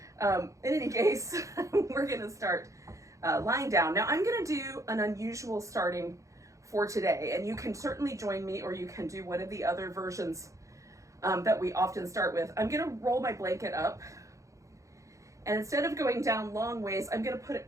In any case, we're gonna start lying down. Now I'm gonna do an unusual starting for today, and you can certainly join me, or you can do one of the other versions that we often start with. I'm gonna roll my blanket up, and instead of going down long ways, I'm gonna put it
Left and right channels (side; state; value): left; late; 0.15 ms